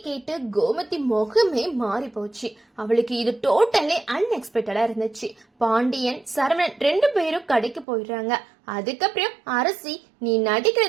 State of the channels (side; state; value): left; drops out; at 7.9 s